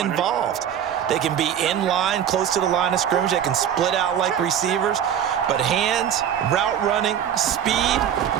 They can be in line, close to the line of scrimmage. They can split out like receivers. But hands, route running, speed,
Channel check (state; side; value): quieter; left; 9.3 dB